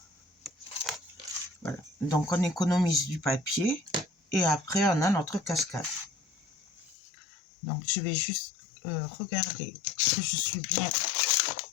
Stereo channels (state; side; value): drops out; right; at 7.0 s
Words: Voilà. Donc, on économise du papier et après, on a notre cascade. Donc, je vais juste regarder que je suis bien